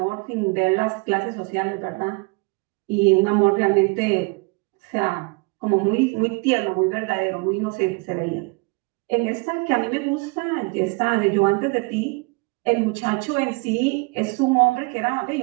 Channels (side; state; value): left; quieter; 29.1 dB